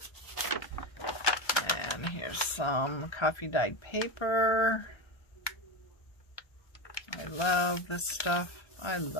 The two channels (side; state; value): right; late; 1.3 ms